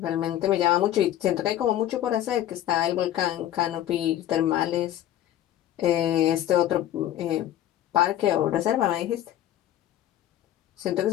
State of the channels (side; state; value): right; quieter; 12.5 dB